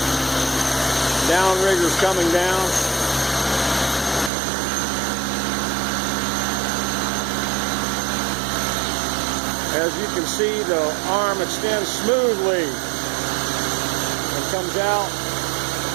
Downrigger's coming down. As you can see, the arm extends smoothly and comes out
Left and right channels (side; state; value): left; drops out; at 4.3 s